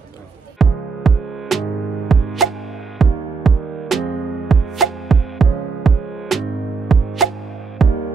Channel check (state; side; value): quieter; left; 4.8 dB